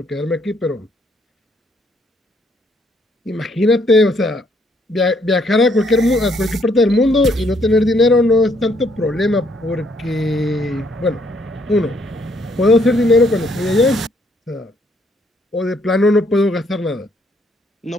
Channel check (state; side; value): normal; both; correlation 0.69